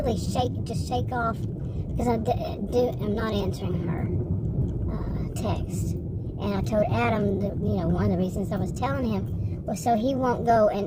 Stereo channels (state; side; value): identical; both; correlation 1.00